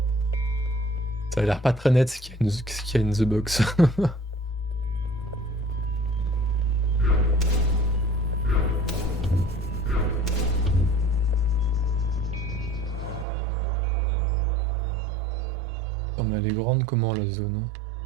Ça a l'air pas très net ce qu'il y a in the box. Oh mais elle est grande comment la zone?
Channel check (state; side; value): drops out; left; at 13.2 s